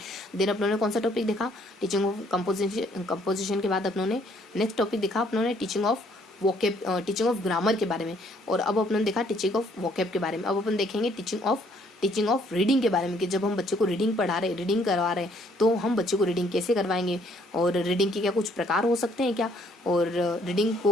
देन अपनों ने कौन सा टॉपिक देखा, टीचिंग ऑफ कंपोजिशन के बाद अपनों ने नेक्स्ट टॉपिक देखा अपनों ने teaching of vocab, teaching of grammar के बारे में। और अब अपनों ने देखा टीचिंग ऑफ वोकैब के बारे में। अब अपन देखेंगे टीचिंग ऑफ रीडिंग के बारे में कि जब हम बच्चे को रीडिंग पढ़ा रहे, रीडिंग करवा रहे हैं, तो हम बच्चे को रीडिंग कैसे करवाएंगे, और रीडिंग के क्या कुछ प्रकार हो सकते हैं क्या, और रीडिंग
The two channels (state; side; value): normal; both; correlation 0.65